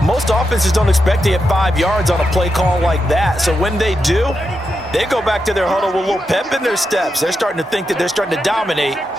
most offenses don't expect to get 5 yards on a play call like that. So when they do, they go back to their huddle with a little pep in their steps. They're starting to think that they're starting to dominate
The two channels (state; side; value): normal; both; correlation 0.86